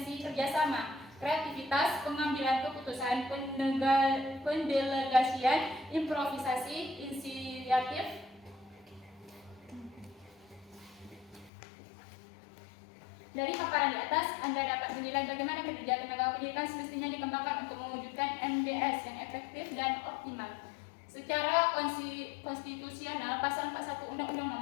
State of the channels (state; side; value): drops out; right; at 11.5 s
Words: kerjasama, kreativitas, pengambilan keputusan, pendelegasian, improvisasi, inisiatif. Dari paparan di atas, Anda dapat menilai bagaimana kinerja tenaga pendidikan semestinya dikembangkan untuk mewujudkan MDS yang efektif dan optimal. Secara konstitusional, Pasal 41 Undang-Undang